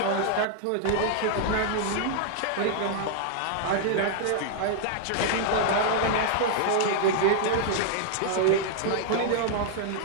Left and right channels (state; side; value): different; both; correlation -0.01